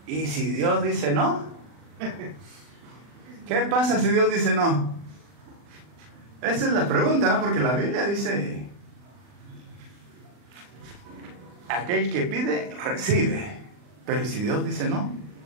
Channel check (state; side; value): late; left; 40 ms